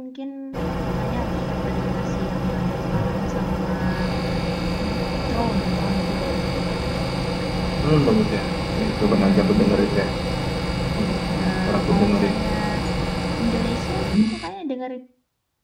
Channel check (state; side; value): identical; both; correlation 1.00